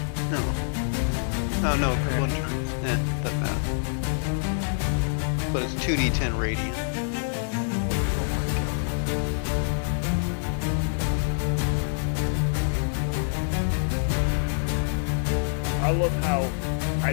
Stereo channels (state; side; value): silent; right; digital silence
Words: No. Oh no, one turn. Doesn't matter. But it's 2d10 radiant. I love how I